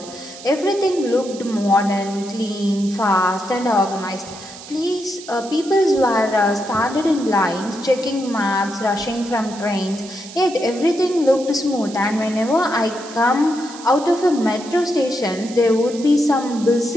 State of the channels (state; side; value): noise; right; hiss, 16 dB below the sound